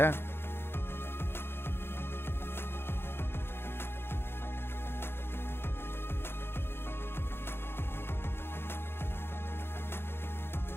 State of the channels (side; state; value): right; late; 0.11 ms